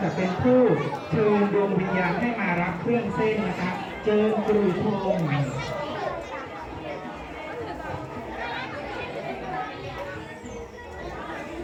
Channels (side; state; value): both; identical; correlation 1.00